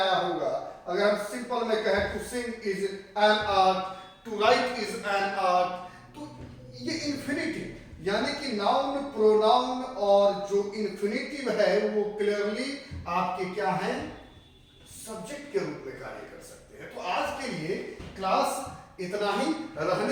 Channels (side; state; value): both; identical; correlation 1.00